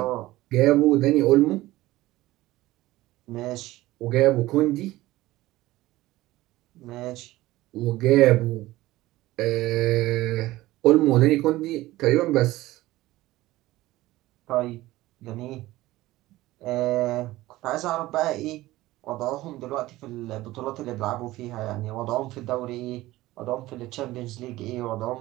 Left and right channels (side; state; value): left; quieter; 17.4 dB